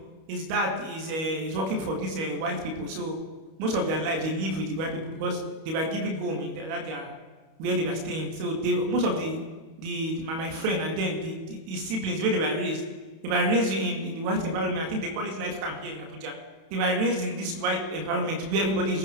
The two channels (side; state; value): left; late; 31 ms